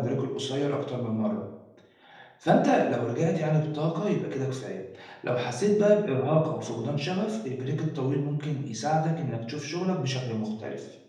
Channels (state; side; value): identical; both; correlation 1.00